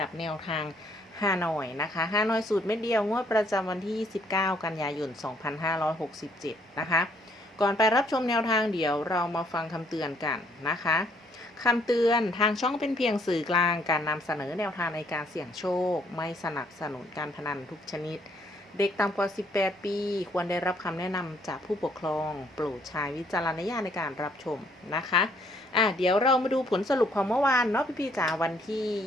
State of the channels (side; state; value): both; normal; correlation 0.66